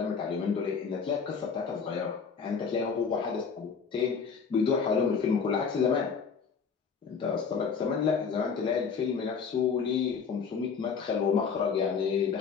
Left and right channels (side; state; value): right; quieter; 5.9 dB